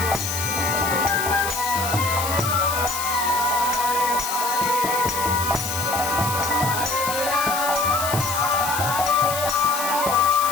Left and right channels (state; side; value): noise; left; hiss, 5 dB below the sound